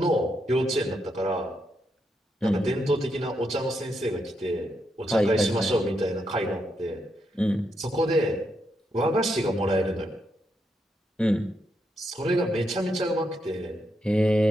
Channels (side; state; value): both; normal; correlation 0.81